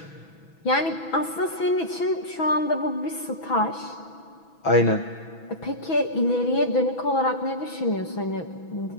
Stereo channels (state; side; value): late; right; 6.1 ms